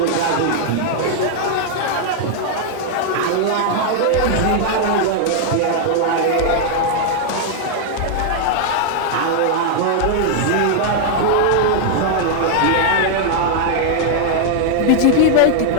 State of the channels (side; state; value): both; different; correlation 0.00